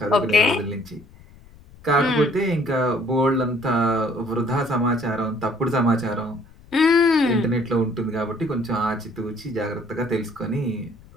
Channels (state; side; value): noise; left; rumble, 23 dB below the sound